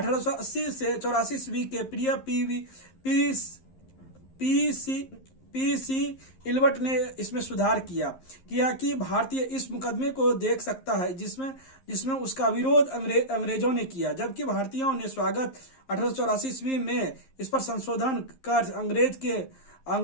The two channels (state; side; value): late; right; 11 ms